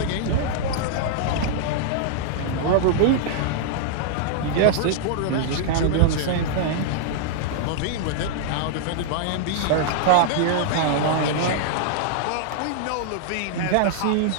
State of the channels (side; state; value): both; different; correlation -0.01